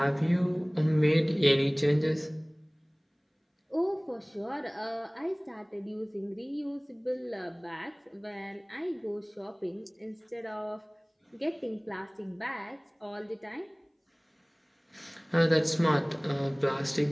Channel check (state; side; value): identical; both; correlation 1.00